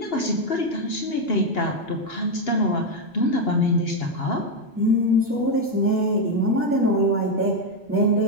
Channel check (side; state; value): both; normal; correlation 0.04